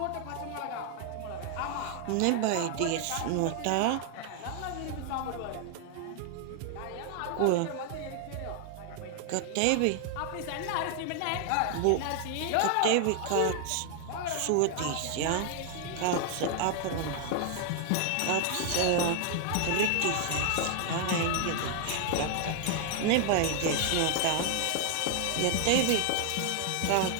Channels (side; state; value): both; different; correlation 0.00